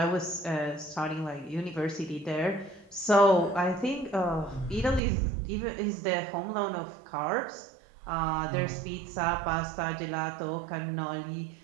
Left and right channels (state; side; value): drops out; left; at 5.0 s